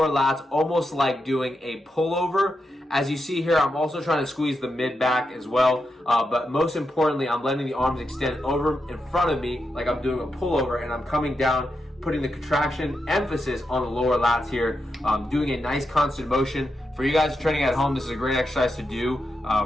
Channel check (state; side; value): normal; both; correlation 0.86